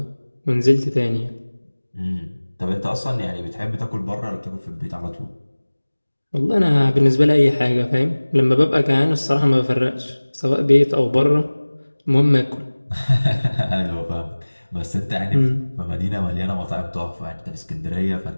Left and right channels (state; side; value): inverted; both; correlation -1.00